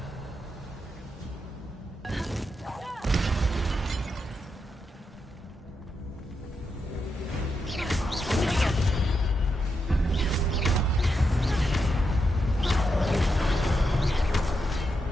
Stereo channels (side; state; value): both; normal; correlation 0.84